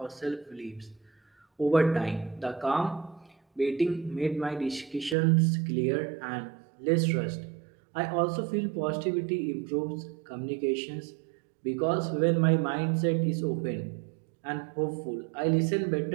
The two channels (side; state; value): left; drops out; at 5.2 s